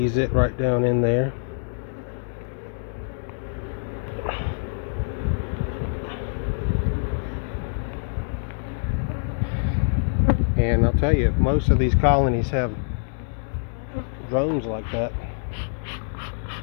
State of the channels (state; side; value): silent; right; digital silence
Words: it right down in there. And I'll tell you, if most of these colonies have drones like that,